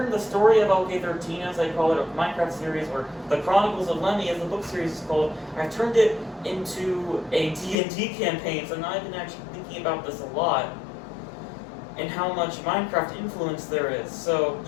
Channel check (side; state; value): right; drops out; at 7.8 s